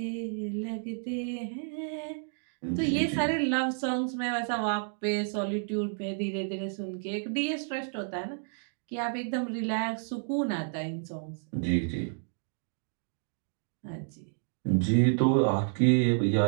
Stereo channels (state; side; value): silent; left; digital silence